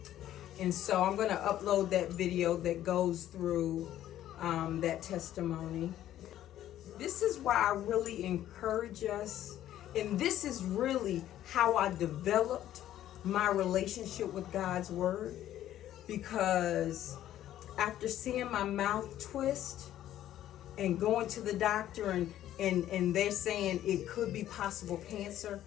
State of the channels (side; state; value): right; quieter; 12.4 dB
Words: And so I'm going to upload that video that goes through that testimony. This is why I really encourage us, and this is really how I developed my relationship with God's word, because after seeing my mouth twist and going to the doctor and they're saying it could be possible cancer,